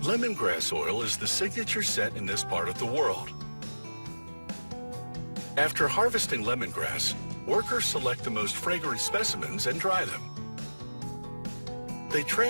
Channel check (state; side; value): inverted; both; correlation -1.00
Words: Lemongrass oil is the signature scent in this part of the world. After harvesting lemongrass, workers select the most fragrant specimens and dry them. They